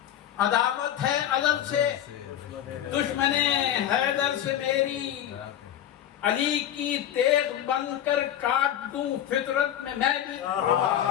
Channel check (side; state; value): right; quieter; 10.9 dB